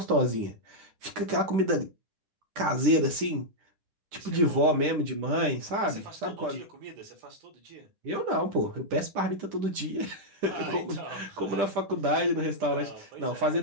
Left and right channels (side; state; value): left; late; 10 ms